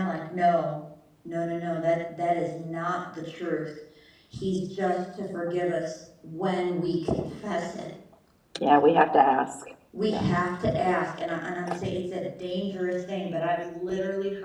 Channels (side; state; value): both; identical; correlation 1.00